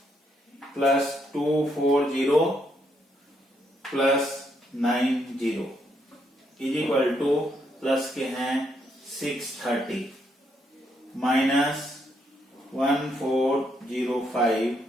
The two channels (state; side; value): normal; both; correlation 0.75